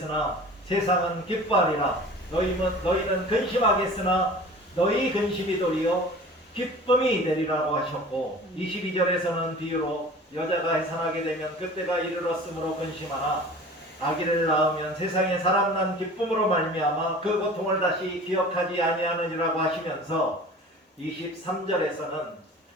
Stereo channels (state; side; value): normal; both; correlation 0.42